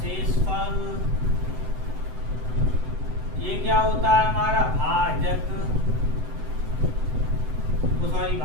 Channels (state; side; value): late; left; 7.9 ms